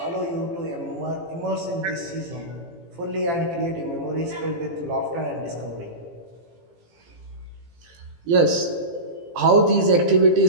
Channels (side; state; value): left; late; 18 ms